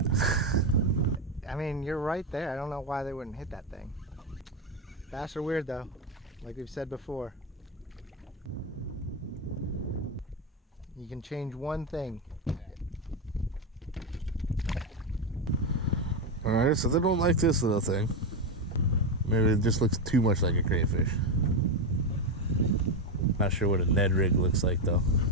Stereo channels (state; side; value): normal; both; correlation 0.10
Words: I mean, you're right there. I don't know why they wouldn't hit that thing. Bass are weird though, like we've said before. You can change one thing. Alright, so they don't like this little thing. Maybe it just looks too much like a crayfish. Not sure what a Ned Rig looks like though.